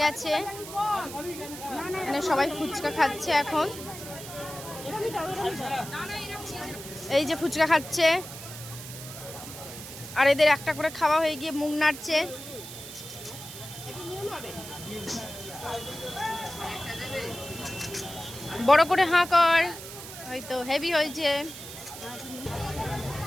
গেছে। মানে সবাই ফুচকা খাচ্ছে এখন। এই যে ফুচকা খাচ্ছে, আর এদের একটা করে খাওয়া হয়ে গিয়ে মুখ নাড়ছে। বড় করে হাঁ কর, হয়তো হেভি হয়েছে।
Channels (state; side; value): noise; right; hiss, 12 dB below the sound